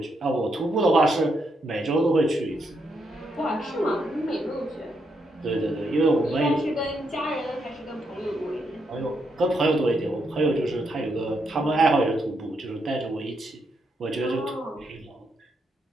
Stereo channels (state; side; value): normal; both; correlation 0.79